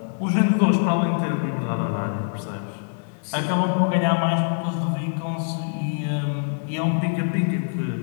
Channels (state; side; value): silent; right; digital silence